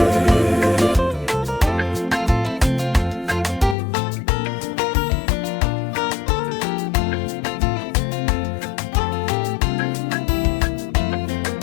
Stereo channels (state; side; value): drops out; right; at 3.8 s